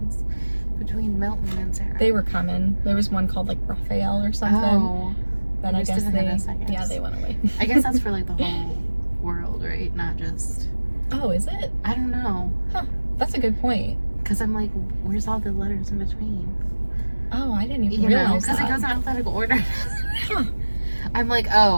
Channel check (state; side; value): inverted; both; correlation -1.00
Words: between Milton and Sarah? They were coming. There was one called like Raphael or something. Oh. But They I just guess didn't they, hit us, I guess. yeah, they went away. I guess that's for like the whole world, right? Not just. Oh, is it? I don't know. That's a good point. Because I'm like, where's all the letters in between? Oh, I didn't even You know, realize because it that. goes in alphabetical order. Huh. I'm like,